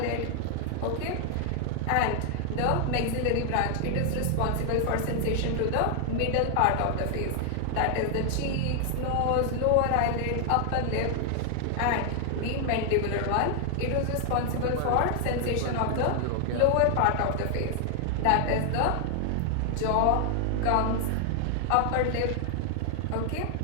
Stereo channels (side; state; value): both; different; correlation 0.00